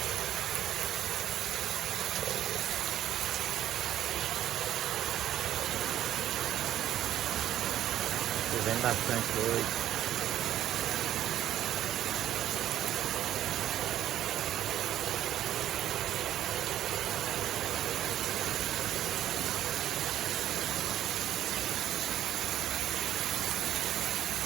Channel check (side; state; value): left; quieter; 11.9 dB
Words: Chovendo bastante hoje.